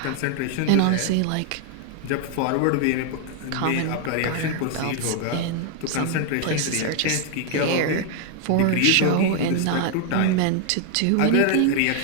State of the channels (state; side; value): different; both; correlation 0.00